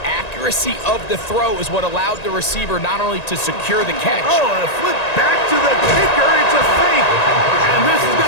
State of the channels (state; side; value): late; right; 1.9 ms